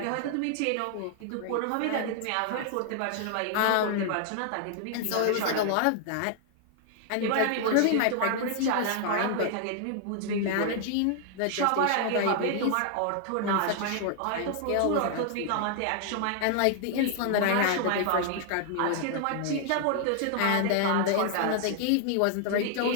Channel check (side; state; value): both; different; correlation 0.00